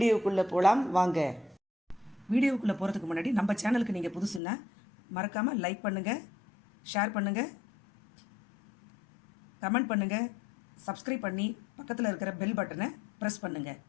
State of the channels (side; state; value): right; drops out; at 4.4 s